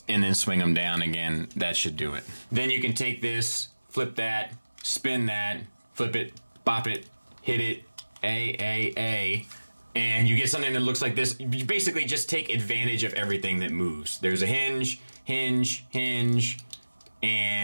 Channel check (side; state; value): both; inverted; correlation -1.00